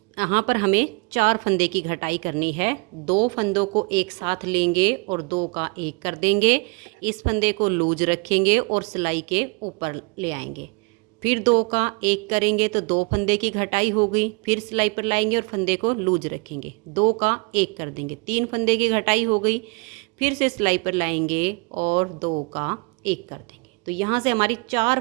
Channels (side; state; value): left; quieter; 31.4 dB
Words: यहाँ पर हमें 4 फंदे की घटाई करनी है। 2 फंदों को एक साथ लेंगे और 2 का 1 कर देंगे। इस फंदे को लूज रखेंगे और सिलाई के ऊपर ले आएंगे। फिर 2 का 1 करेंगे तो 2 फंदे की घटाई हो गई। फिर सिलाई पर लाएंगे और फंदे को लूज रखेंगे, 2 का 1 कर देंगे, 3 फंदे की घटाई हो गई। फिर से सिलाई पर लाएंगे और 2 का 1 कर देंगे। तो यहाँ से हमारी 4